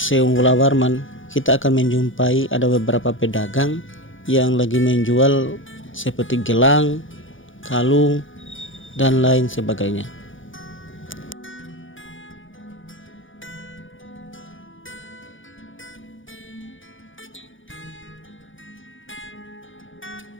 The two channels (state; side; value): late; right; 0.57 ms